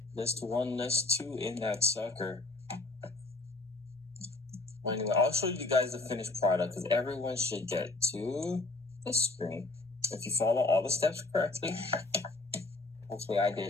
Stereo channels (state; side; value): quieter; right; 3.2 dB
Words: List one, list two in that sucker. Well, anyway, I'll show you guys the finished product because everyone should get to this screen. If you follow all the steps correctly, hopefully I